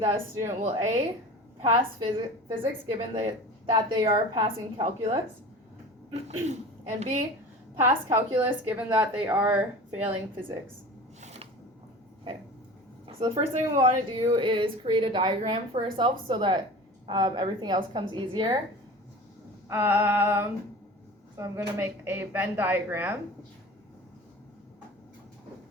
a student will A, pass physics given that they are passing calculus, and B, pass calculus given that they are failing physics. Okay, so the first thing we want to do is create a diagram for ourselves so that everything else comes easier. So I'm going to make a Venn diagram.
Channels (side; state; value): both; normal; correlation 0.37